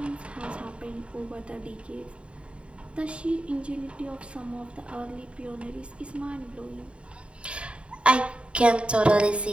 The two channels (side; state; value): left; late; 0.058 ms